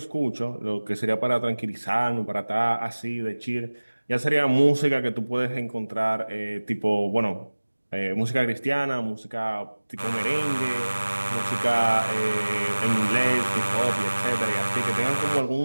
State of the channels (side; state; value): both; inverted; correlation -1.00